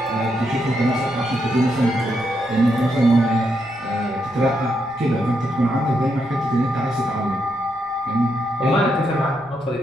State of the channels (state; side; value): noise; left; rumble, 26 dB below the sound